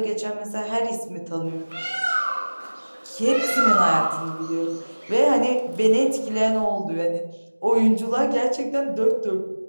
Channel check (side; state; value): both; inverted; correlation -1.00